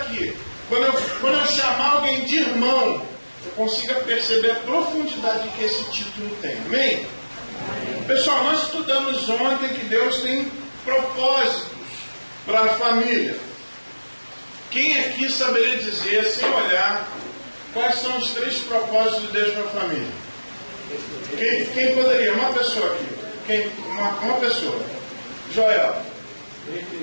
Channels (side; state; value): both; inverted; correlation -1.00